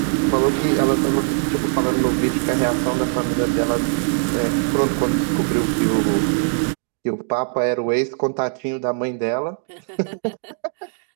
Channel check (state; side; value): silent; left; 64 dB below the other